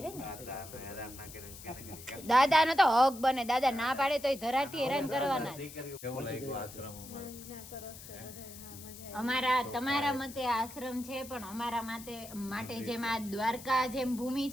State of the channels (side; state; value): left; noise; hiss, 15 dB below the sound